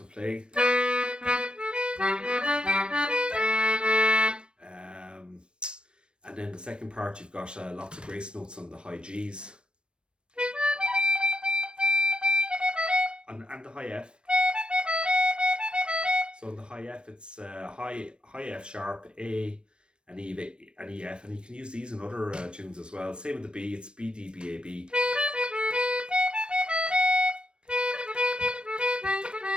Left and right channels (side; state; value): left; late; 0.055 ms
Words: playing. And then the second part, you've got lots of grace notes on the high Gs. And the high F. So in the high F, it's high F sharp, A, and E, and EF, and you can use these in other tunes as well. Same with the B, it's B, D, B, A, B.